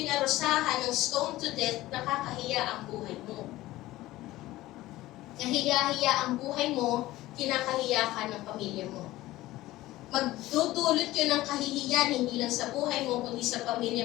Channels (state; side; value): quieter; right; 16.9 dB